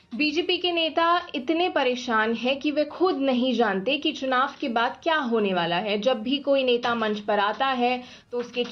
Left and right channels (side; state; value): both; identical; correlation 1.00